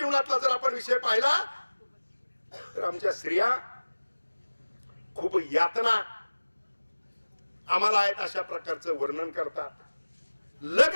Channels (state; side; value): inverted; both; correlation -1.00